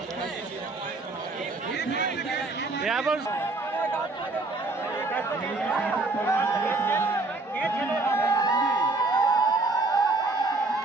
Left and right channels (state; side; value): quieter; left; 3.2 dB